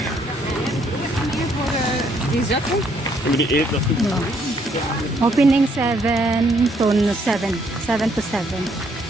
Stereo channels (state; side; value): normal; both; correlation 0.69